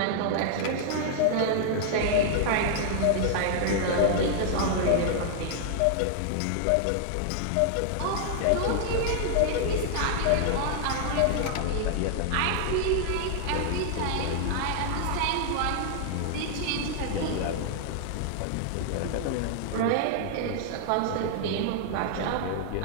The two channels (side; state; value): both; different; correlation 0.00